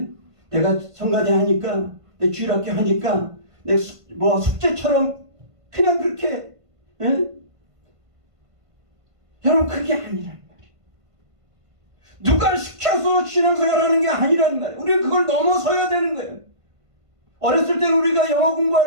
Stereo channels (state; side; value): late; left; 1.5 ms